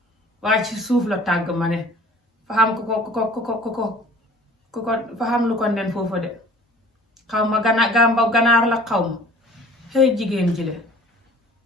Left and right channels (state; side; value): normal; both; correlation 0.48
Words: waaye ci suuf la tàgg ma ne fa xam ko fa xam lu ko nen foofu de xaw ma ganaar la xaw ma xëy jigéen ji le